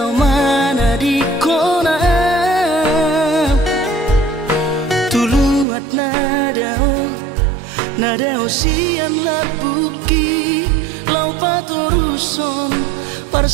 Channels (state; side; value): drops out; left; at 5.7 s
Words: di kona tuluat nadao sian labuki lau patoruson